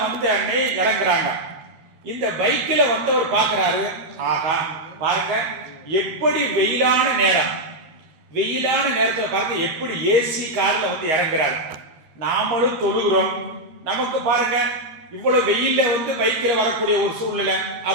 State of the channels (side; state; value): left; late; 13 ms